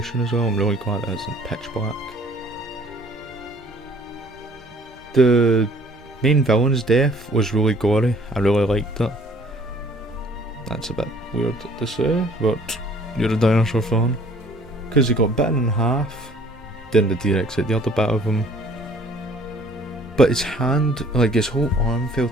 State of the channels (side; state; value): both; normal; correlation 0.57